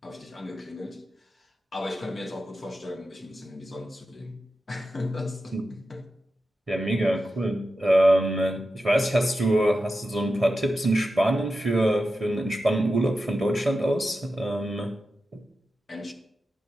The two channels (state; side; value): normal; both; correlation 0.91